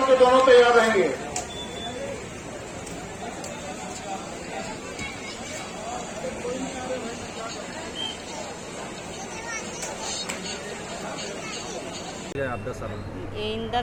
के दोनों तैयार रहेंगे। आप 10 सालों में इन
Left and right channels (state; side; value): identical; both; correlation 1.00